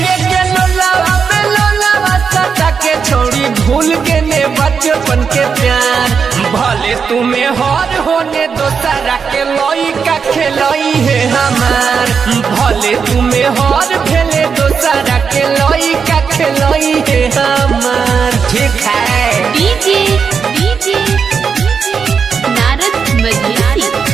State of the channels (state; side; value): quieter; left; 6.1 dB